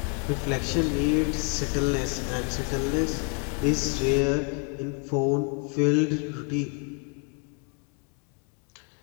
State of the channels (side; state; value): right; quieter; 35.3 dB